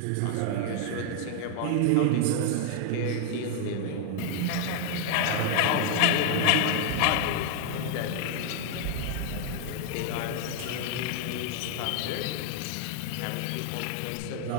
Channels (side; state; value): both; different; correlation 0.00